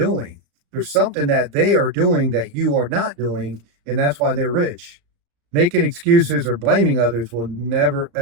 There's something that they are doing that you are not doing, and that's why they're rich. Making excuses or blaming others will never,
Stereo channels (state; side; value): late; left; 35 ms